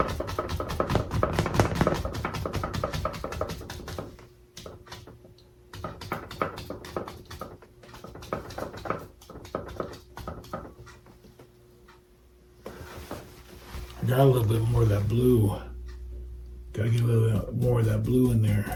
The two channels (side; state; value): both; identical; correlation 1.00